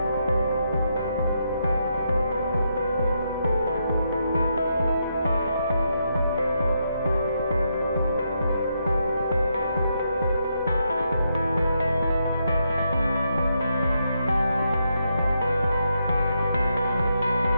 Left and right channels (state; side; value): inverted; both; correlation -0.80